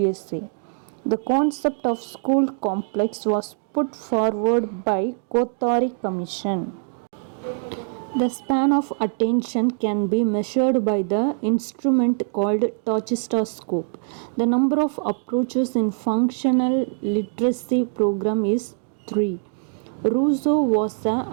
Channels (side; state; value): left; silent; 62 dB below the other